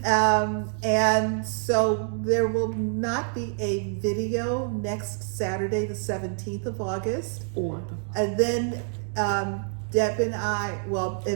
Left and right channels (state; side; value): silent; left; 61 dB below the other